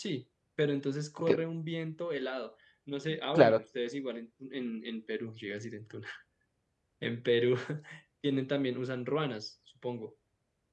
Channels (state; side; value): identical; both; correlation 1.00